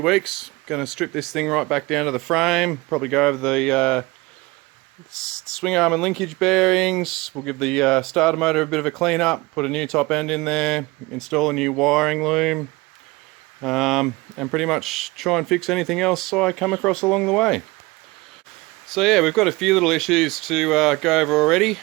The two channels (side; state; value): left; quieter; 22.7 dB